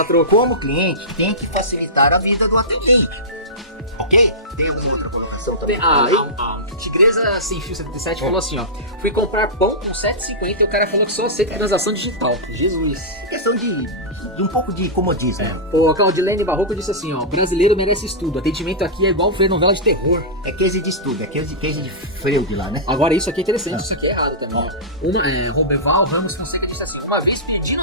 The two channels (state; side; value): normal; both; correlation -0.16